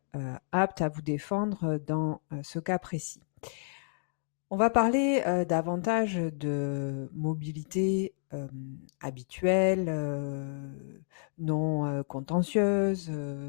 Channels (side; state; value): right; silent; digital silence